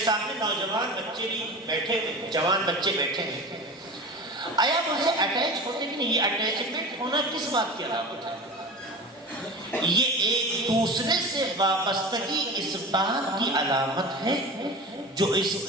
سامنے نوجوان بچے بھی بیٹھے ہیں، جوان بچے بیٹھے ہیں، آیا آپ ان سے اٹیچ ہوتے کہ نہیں؟ یہ اٹیچمنٹ ہونا کس بات کی علامت ہے؟ یہ ایک دوسرے سے وابستگی اس بات کی علامت ہے جو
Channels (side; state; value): both; normal; correlation 0.33